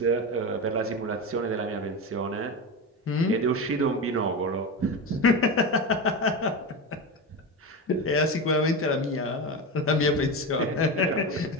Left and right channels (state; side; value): normal; both; correlation 0.20